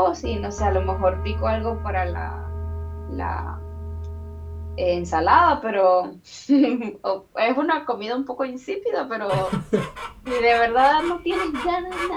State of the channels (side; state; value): both; identical; correlation 1.00